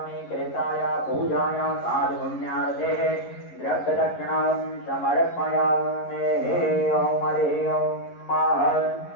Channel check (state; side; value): late; right; 11 ms